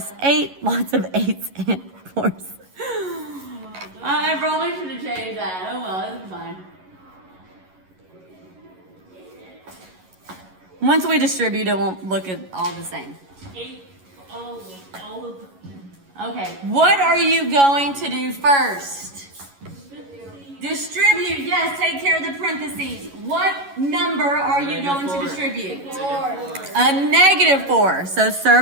8. Lots of 8s and 4s. I probably should have changed that. Oh well, it's fine. Once we distribute, it won't look all the same. 8, all of them. Okay, what are you going to do first? Distribute, yes, take care of the parentheses. What number are you going to distribute? 4. A -4. So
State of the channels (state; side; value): late; left; 11 ms